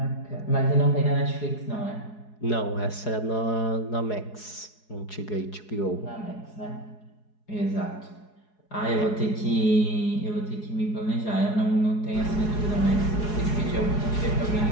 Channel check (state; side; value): late; right; 4.8 ms